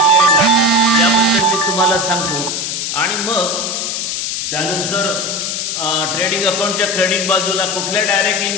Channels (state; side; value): noise; left; hiss, 2 dB below the sound